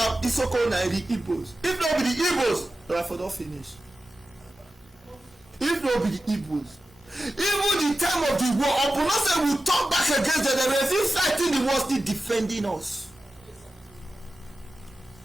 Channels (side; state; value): both; normal; correlation 0.93